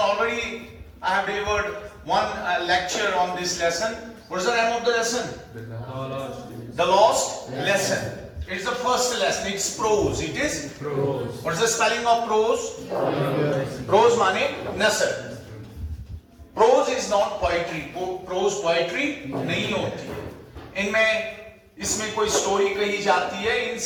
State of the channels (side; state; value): both; identical; correlation 1.00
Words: already I have delivered one lecture on this lesson. What is the name of the lesson? The lost lesson. It's the first lesson. It's prose. It is Prose. What is the spelling of prose? Prose माने नसर. Prose is not poetry. Prose poetry नहीं होती है. इसमें कोई story कही जाती है in